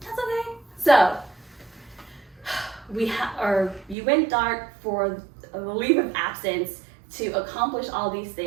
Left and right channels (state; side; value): drops out; left; at 4.0 s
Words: okay. So, you went dark for a leave of absence to accomplish all these